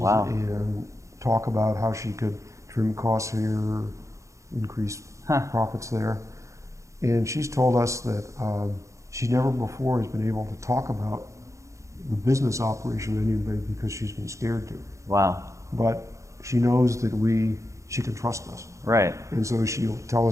and talk about how she could trim costs here, increase profits there. And she's told us that she never before has been able to talk about the business operation with anybody because she's been scared to. Wow. But she knows that she can trust us. Right. And so she'll tell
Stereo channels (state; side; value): late; left; 0.15 ms